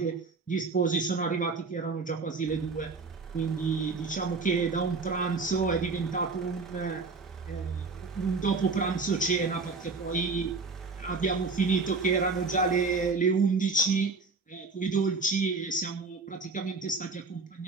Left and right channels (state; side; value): quieter; left; 4.2 dB